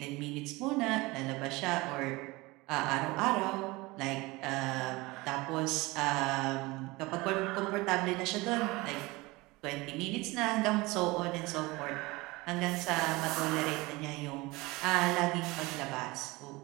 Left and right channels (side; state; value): left; quieter; 22.4 dB